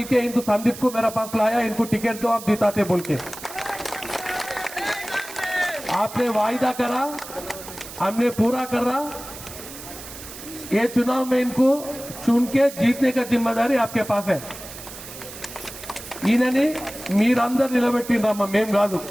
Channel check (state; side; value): noise; right; hiss, 13 dB below the sound